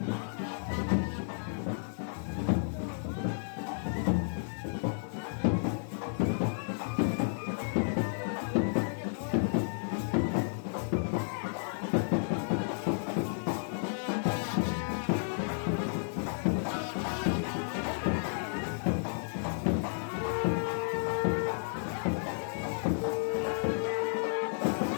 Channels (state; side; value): silent; right; 56 dB below the other